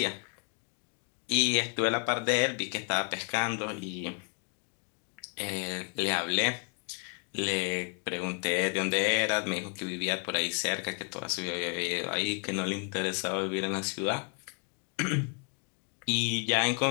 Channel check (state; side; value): quieter; right; 39.5 dB